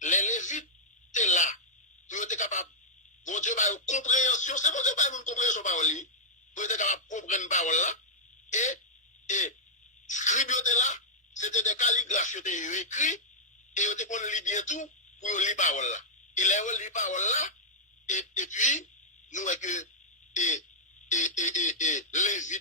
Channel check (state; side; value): normal; both; correlation -0.07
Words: Les Lévites étaient là. Ils étaient capables. Bon Dieu, par une compréhension. C'est bon Dieu, par une compréhension parole. Ils étaient capables de comprendre parole là. Et scribes étaient là. C'était des calligraphes qui étaient écrits. Et ils étaient qu'on lit bien tout pour lire parole là. Il a lu parole là. Et puis, nous voyons que